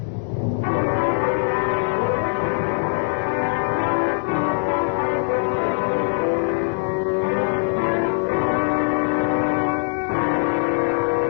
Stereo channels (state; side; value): silent; right; digital silence